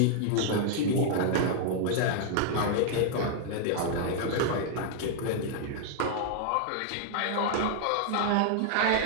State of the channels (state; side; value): different; both; correlation 0.00